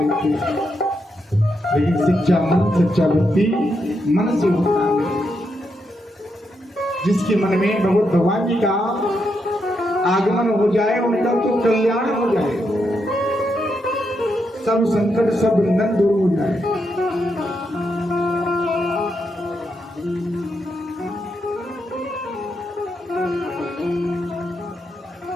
थे। लेकिन सच्चा मन, सच्चा भक्ति मन से होता है। जिसके मन में भगवान जी का आगमन हो जाए, उनका तो कल्याण हो जाए, सब संकट सब बंधन दूर हो जाए।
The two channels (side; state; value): both; normal; correlation 0.82